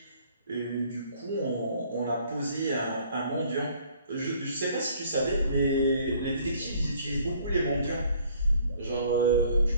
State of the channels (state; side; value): inverted; both; correlation -0.59